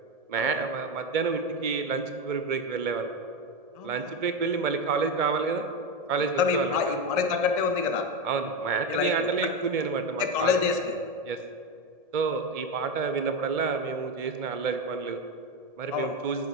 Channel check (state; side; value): late; left; 1.7 ms